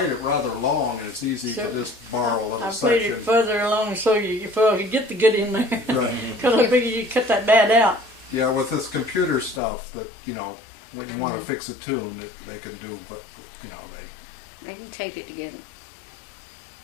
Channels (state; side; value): drops out; right; at 9.6 s